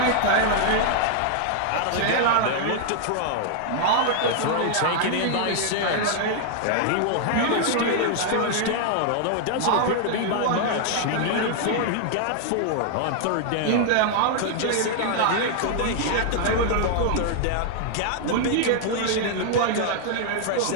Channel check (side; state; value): both; different; correlation 0.00